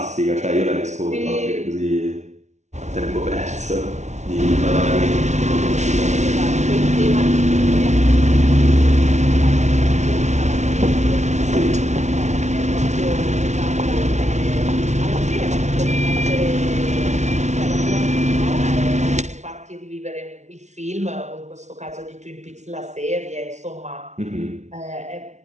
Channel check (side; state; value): left; late; 0.33 ms